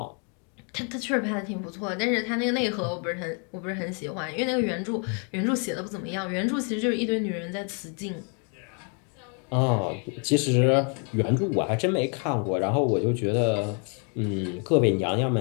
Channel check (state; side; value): quieter; right; 39.0 dB